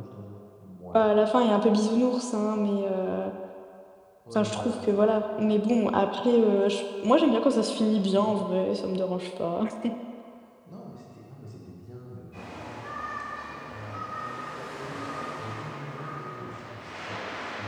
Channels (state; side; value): identical; both; correlation 1.00